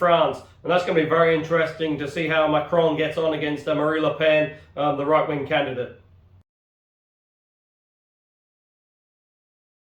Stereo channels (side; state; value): both; identical; correlation 1.00